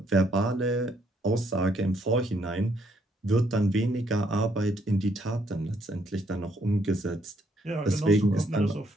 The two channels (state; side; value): normal; both; correlation 0.71